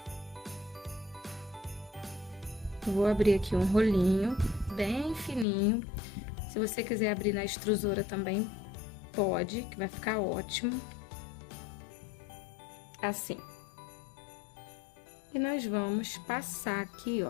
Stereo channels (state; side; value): drops out; right; at 5.5 s